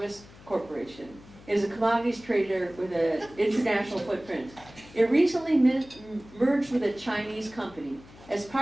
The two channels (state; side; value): noise; left; hum, 21 dB below the sound